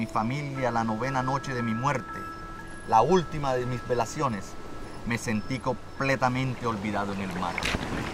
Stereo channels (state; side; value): identical; both; correlation 1.00